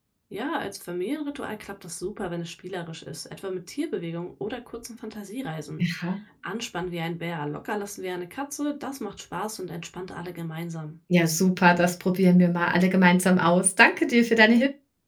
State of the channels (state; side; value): identical; both; correlation 1.00